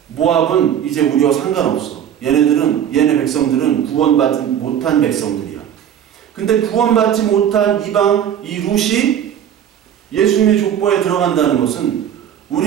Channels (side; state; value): left; quieter; 9.5 dB